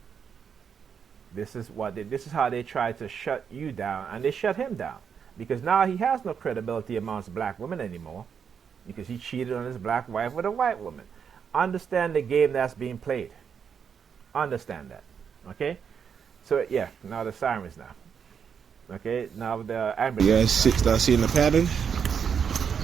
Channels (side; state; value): left; quieter; 7.1 dB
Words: This is how they try to shut you down, and they shut him down. Because now he has no credibility amongst black women anymore, because he cheated on his black wife with a white woman. Understand the game that's being played. Understand that. Okay? So yeah, now the sirens now. Okay, now the ambulance. You guys start seeing the pattern?